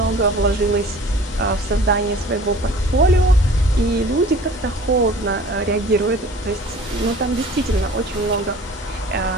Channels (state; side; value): normal; both; correlation 0.46